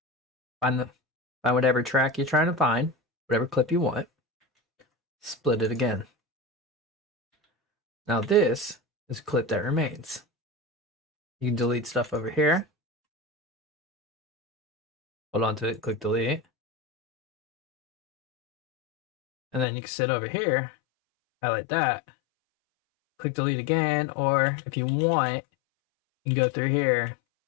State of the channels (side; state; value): right; drops out; at 19.7 s